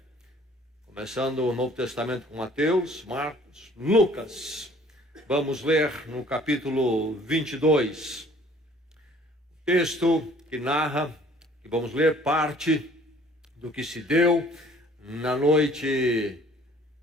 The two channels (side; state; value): both; normal; correlation 0.55